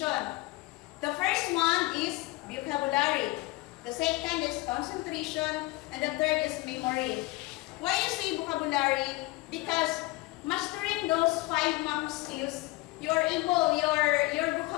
The first one is vocabulary. The second is concentration, and the third is memory. Why you say vocabulary? Because mastering those 5 macro skills, your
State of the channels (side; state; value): right; quieter; 20.9 dB